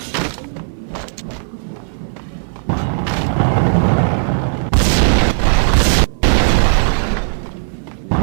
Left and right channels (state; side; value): silent; left; 60 dB below the other